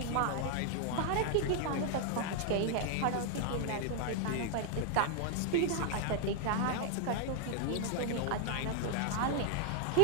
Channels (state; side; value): different; both; correlation 0.00